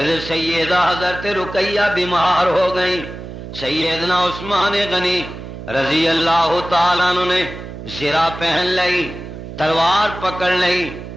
سیدہ حضرت رقیہ بیمار ہو گئی، سیدنا عثمان غنی رضی اللہ تعالیٰ عنہ نے زرہ پہن لی، تلوار پکڑ لی،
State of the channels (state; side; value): noise; right; hum, 11 dB below the sound